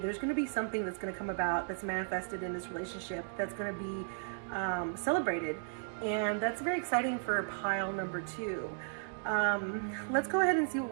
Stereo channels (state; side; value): silent; left; digital silence